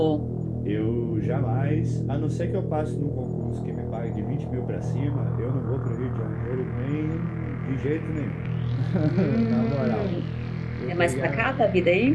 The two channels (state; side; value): identical; both; correlation 1.00